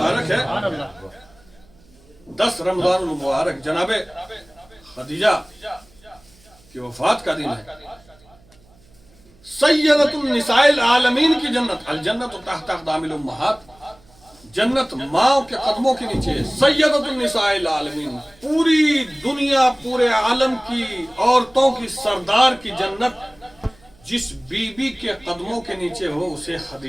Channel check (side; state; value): right; noise; hum, 29 dB below the sound